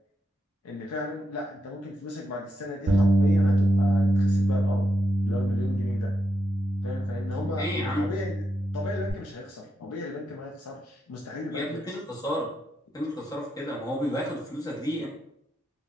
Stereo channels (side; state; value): both; normal; correlation 0.83